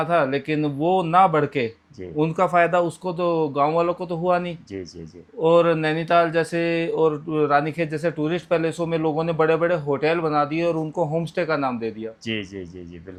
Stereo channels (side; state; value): both; identical; correlation 1.00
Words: था, लेकिन वो ना बढ़ के जी उनका फायदा उसको तो गांव वालों को तो हुआ नहीं। जी जी जी और नैनीताल जैसे और रानीखेत जैसे टूरिस्ट पैलेसों में लोगों ने बड़े बड़े होटल बना दिए और उनको होम स्टे का नाम दे दिया। जी जी जी जी